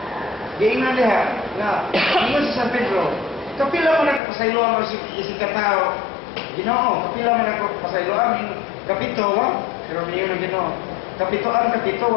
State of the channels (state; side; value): drops out; right; at 4.2 s